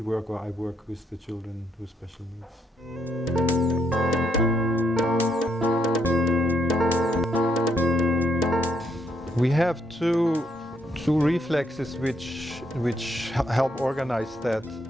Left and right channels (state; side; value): normal; both; correlation 0.74